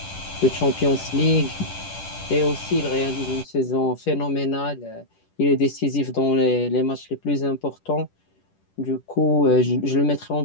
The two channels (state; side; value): late; right; 10 ms